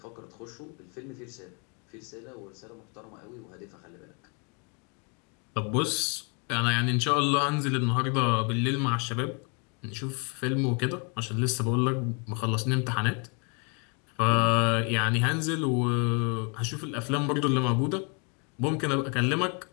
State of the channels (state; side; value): quieter; right; 35.6 dB